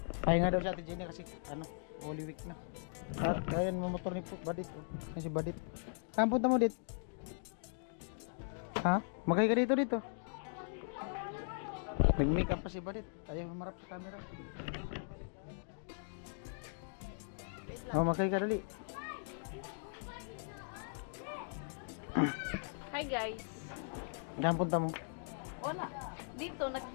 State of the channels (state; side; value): silent; right; digital silence